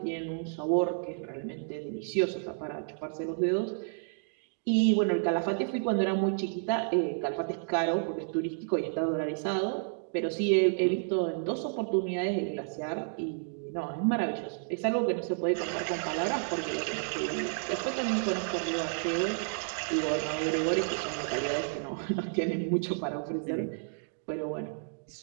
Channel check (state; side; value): silent; left; digital silence